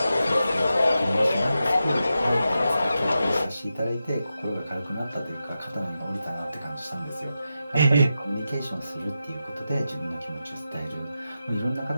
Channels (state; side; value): inverted; both; correlation -0.90